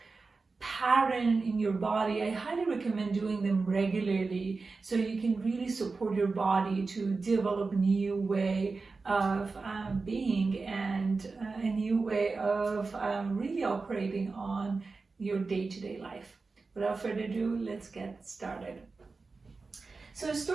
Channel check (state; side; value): quieter; left; 4.1 dB